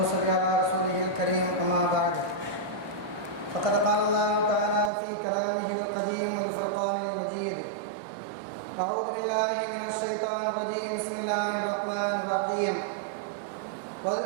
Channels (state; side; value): drops out; left; at 4.9 s